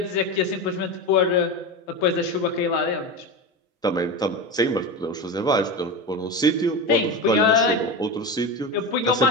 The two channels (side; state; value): both; normal; correlation 0.22